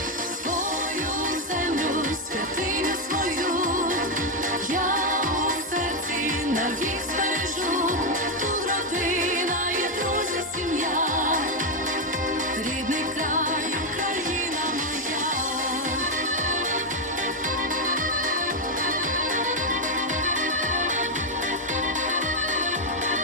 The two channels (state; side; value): normal; both; correlation 0.03